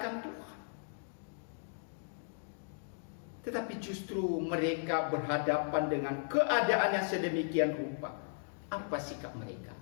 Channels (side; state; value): right; silent; digital silence